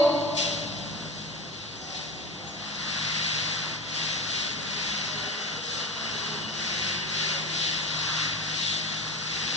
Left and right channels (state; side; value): normal; both; correlation 0.27